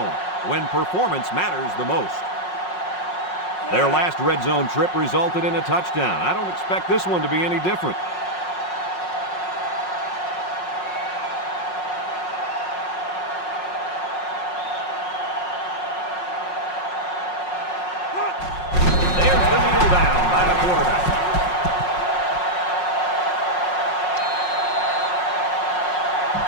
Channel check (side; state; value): right; late; 5.5 ms